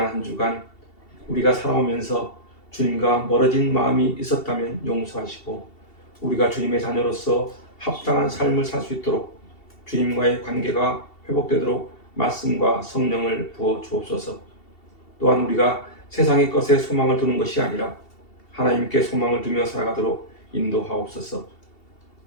한 주간 우리가 살아오면서 주님과 멀어진 마음이 있었다면 용서하시고 우리가 주님의 자녀로서 합당한 삶을 살 수 있도록 주님과의 관계가 회복되도록 말씀과 성령을 부어 주옵소서. 또한 우리가 세상의 것에 소망을 두는 것이 아니라 하나님께 소망을 두며 살아가도록 인도하옵소서.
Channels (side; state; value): right; late; 2.7 ms